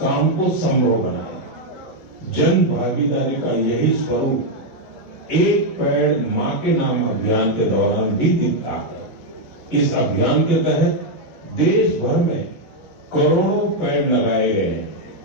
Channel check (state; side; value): late; right; 9.9 ms